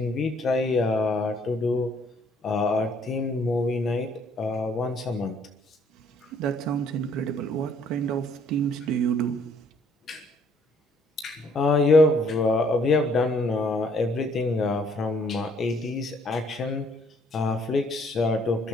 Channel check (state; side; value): normal; both; correlation 0.64